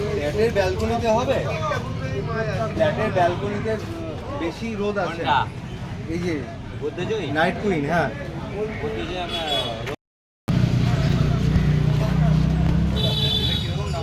ফ্ল্যাটের ব্যালকনিতে হবে, ফ্ল্যাটের ব্যালকনিতে বেশি রোদ আছে। এই যে নাইট কুইন, হ্যাঁ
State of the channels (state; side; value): identical; both; correlation 1.00